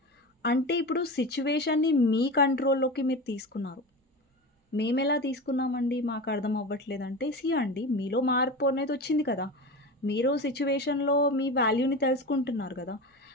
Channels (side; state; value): both; normal; correlation 0.27